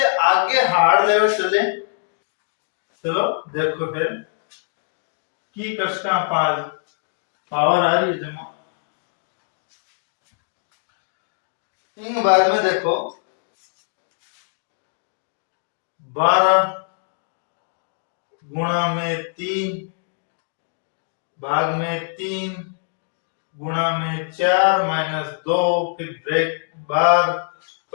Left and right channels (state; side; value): silent; right; digital silence